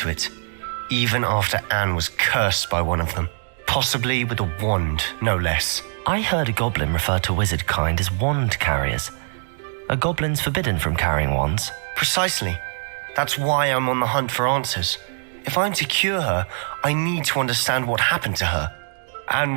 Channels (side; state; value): left; silent; digital silence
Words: it, even after Anne was cursed by one of them, possibly with a wand, no less. I heard a goblin refer to wizard kind as wand carriers. Are goblins forbidden from carrying wands? Precisely. That's why I'm on the hunt for answers. If I'm to cure her, I need to understand what happened to her. Anne